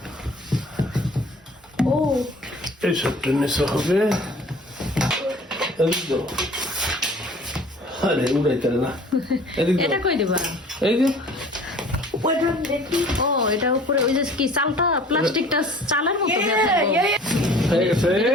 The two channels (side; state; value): both; normal; correlation 0.49